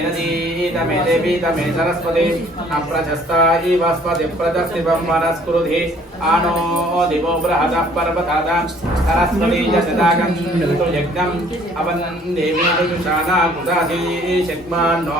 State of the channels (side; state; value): both; normal; correlation 0.57